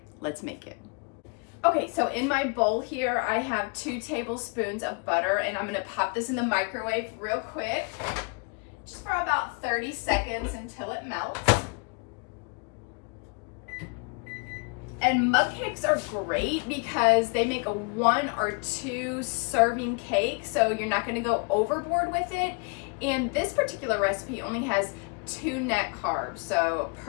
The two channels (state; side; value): quieter; right; 34.2 dB